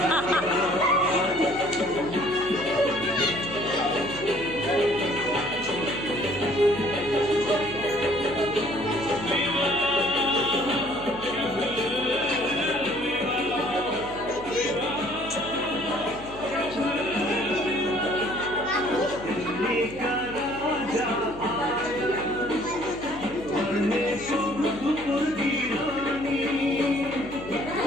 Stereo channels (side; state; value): left; noise; hum, 17 dB below the sound